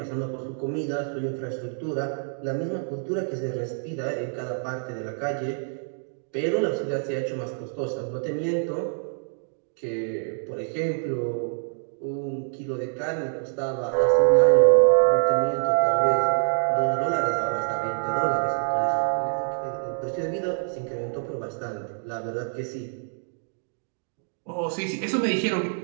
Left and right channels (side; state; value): left; silent; digital silence